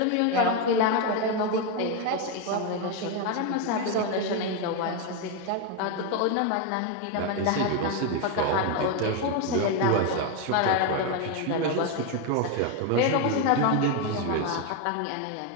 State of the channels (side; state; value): both; different; correlation 0.02